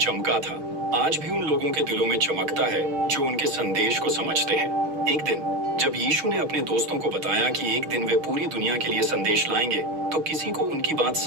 था, आज भी उन लोगों के दिलों में चमकता है जो उनके संदेश को समझते हैं। एक दिन जब यीशु ने अपने दोस्तों को बताया कि एक दिन वे पूरी दुनिया के लिए संदेश लाएंगे, तो किसी को उनकी बात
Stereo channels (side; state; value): left; late; 6.4 ms